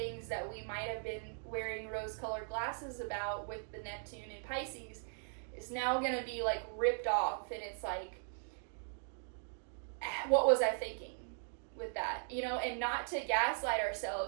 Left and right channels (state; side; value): silent; left; digital silence